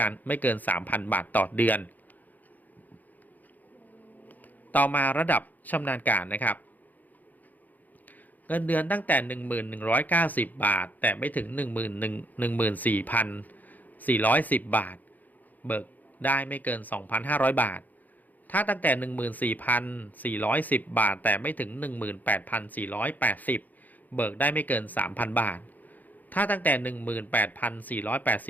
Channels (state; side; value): late; right; 0.082 ms